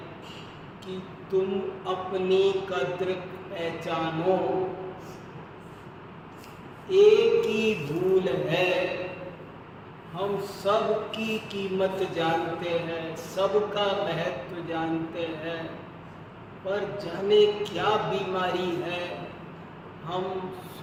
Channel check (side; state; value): both; identical; correlation 1.00